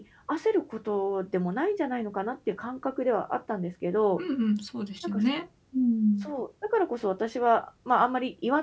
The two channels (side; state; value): both; identical; correlation 1.00